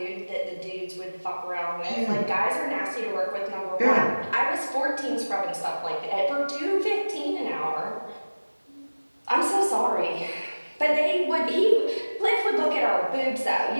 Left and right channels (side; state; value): both; inverted; correlation -1.00